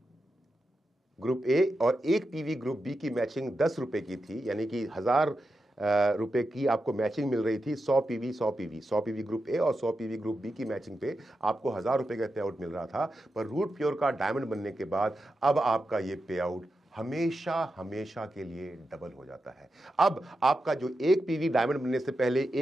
ग्रुप ए और एक पीवी ग्रुप बी की मैचिंग 10 रुपए की थी, यानी कि 1000 रुपए की आपको मैचिंग मिल रही थी। 100 पीवी ग्रुप ए और 100 पीवी ग्रुप बी की मैचिंग पे आपको 1000 रुपए का पे आउट मिल रहा था। पर रूट प्योर का डायमंड बनने के बाद अब आपका ये पे आउट हमेशा हमेशा के लिए डबल हो जाता है। अब आपका जो एक पीवी डायमंड बनने से पहले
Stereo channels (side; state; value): both; normal; correlation 0.89